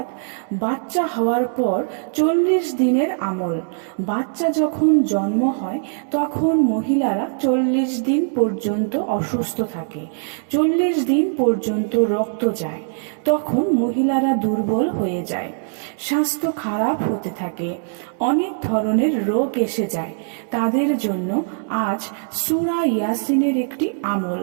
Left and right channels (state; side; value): silent; left; 65 dB below the other